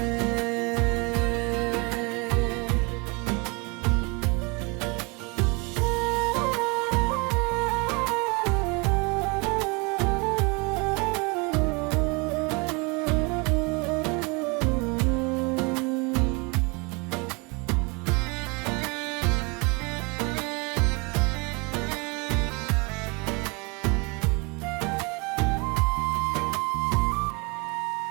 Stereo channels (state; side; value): quieter; left; 29.8 dB